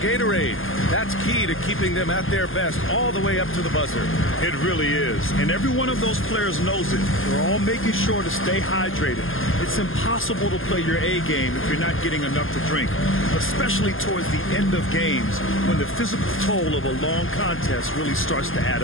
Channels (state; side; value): late; right; 0.59 ms